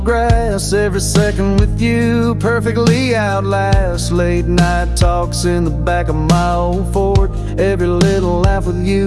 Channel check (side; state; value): both; identical; correlation 1.00